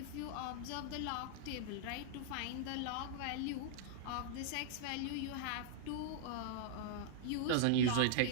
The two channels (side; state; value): both; different; correlation -0.01